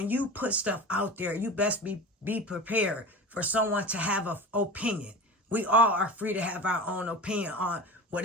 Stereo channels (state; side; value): normal; both; correlation 0.31